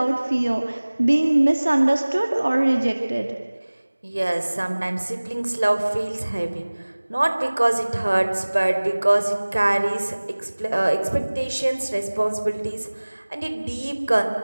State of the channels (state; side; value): inverted; both; correlation -1.00